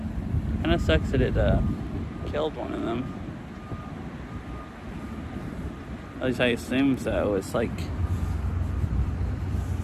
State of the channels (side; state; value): both; identical; correlation 1.00